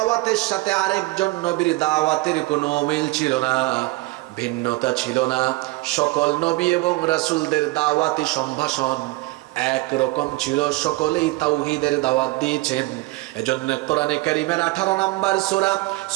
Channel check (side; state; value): left; quieter; 21.3 dB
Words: সাথে আরেকজন নবীর দাওয়াতের কোনো মিল ছিল না, ভিন্নতা ছিল না। সকল নবী এবং রাসূলদের দাওয়াতি সম্ভাষণ একরকম ছিল, সকলেই তাওহীদের দাওয়াত দিয়েছেন। এজন্য কোরআনে কারীমের 18 নম্বর সূরা